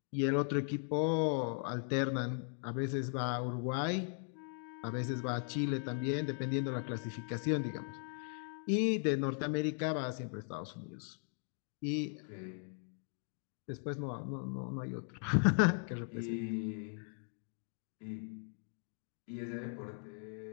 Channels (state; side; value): silent; right; 52 dB below the other